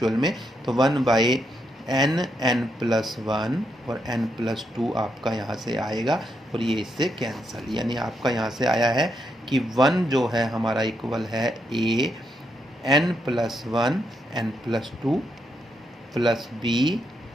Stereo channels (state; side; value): normal; both; correlation 0.80